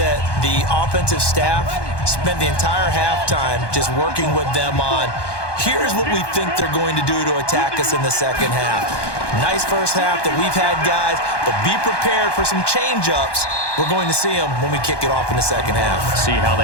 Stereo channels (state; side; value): late; right; 1.2 ms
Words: the offensive staff spent the entire halftime just working with them on here's what we think they're going to do to attack us in the second half. Nice first half that we've had, guys, but be prepared for some change-ups. We're going to see them when we kick it off in the second half. See how